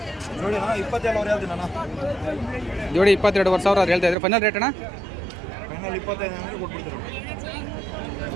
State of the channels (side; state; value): left; drops out; at 4.2 s